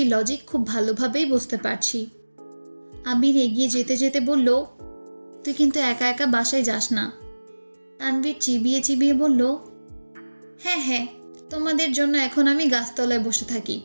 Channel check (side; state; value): both; inverted; correlation -1.00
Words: লজিক খুব ভালোভাবেই বুঝতে পারছি। আবির এগিয়ে যেতে যেতে বলল, তুই কিন্তু একা একা বাসায় যাস না। তানভীর চিবিয়ে চিবিয়ে বলল, হ্যাঁ হ্যাঁ, তোমাদের জন্য এখন আমি গাছতলায় বসে থাকি